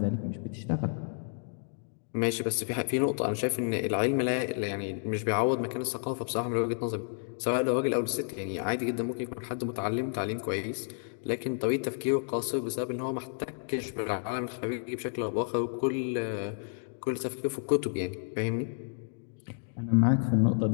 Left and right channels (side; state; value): right; silent; digital silence